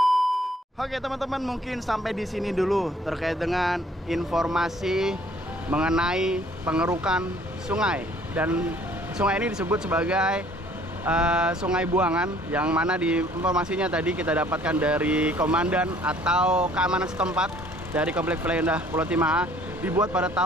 Oke teman-teman, mungkin sampai di sini dulu terkait dengan informasi mengenai pengerukan sungai, dan sungai ini disebut sebagai Sungai Buangan, yang mana di informasinya tadi kita dapatkan dari komandan atau keamanan setempat dari komplek Indah Pulau Timah, dibuat pada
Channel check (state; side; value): normal; both; correlation 0.58